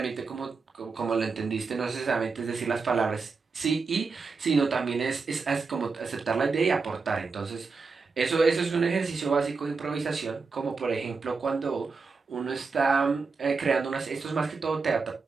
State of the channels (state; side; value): quieter; left; 4.6 dB